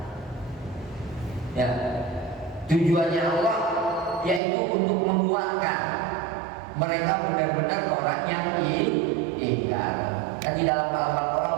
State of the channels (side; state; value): left; drops out; at 4.4 s